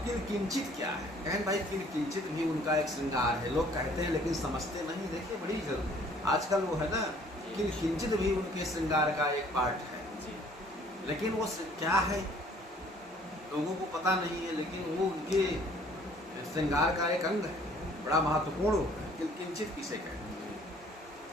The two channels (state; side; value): normal; both; correlation 0.57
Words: किंचित क्या है, कहें भाई किंचित भी उनका एक श्रृंगार है, लोग कहते हैं लेकिन समझते नहीं। देखिए बड़ी जरूर आजकल वो है ना, किंचित भी उनके श्रृंगार का एक पार्ट है, लेकिन वो क्या है लोगों को पता नहीं है, लेकिन वो उनके श्रृंगार का एक अंग है, बड़ा महत्वपूर्ण होता है। किंचित किसे कहते हैं?